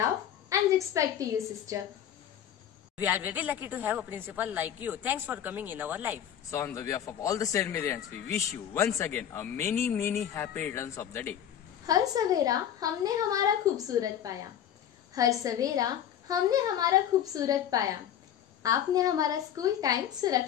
and respect to your sister. We are very lucky to have a principal like you. Thanks for coming in our life. So on the behalf of all the St. Marians, we wish you once again a many happy returns of the day. हर सवेरा हमने हमारा खूबसूरत पाया. हर सवेरा हमने हमारा खूबसूरत पाया. आपने हमारा स्कूल टाइम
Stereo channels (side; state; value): right; quieter; 9.9 dB